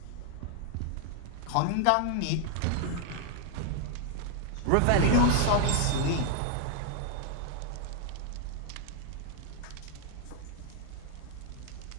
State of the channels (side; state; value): both; different; correlation 0.00